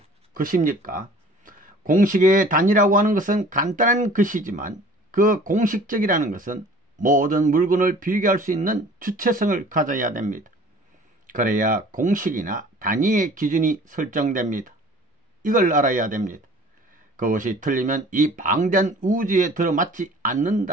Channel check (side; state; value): both; normal; correlation 0.48